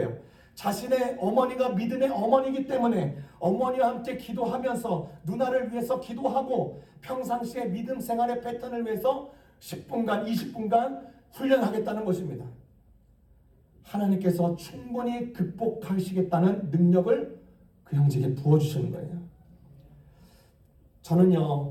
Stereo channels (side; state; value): both; identical; correlation 1.00